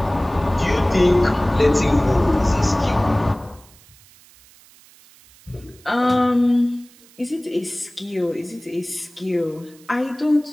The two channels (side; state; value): right; noise; hiss, 26 dB below the sound